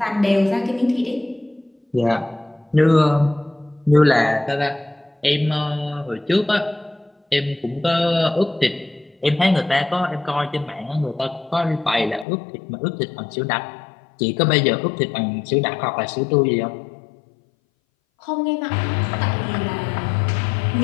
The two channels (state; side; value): drops out; right; at 12.2 s